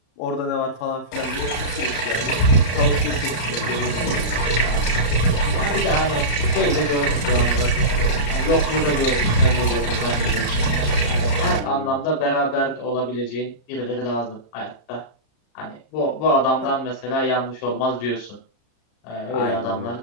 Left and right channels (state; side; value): late; right; 33 ms